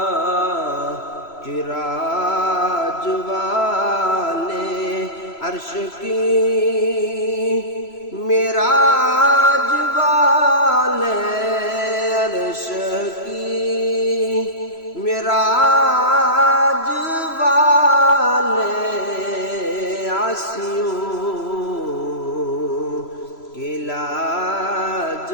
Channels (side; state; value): right; late; 3.0 ms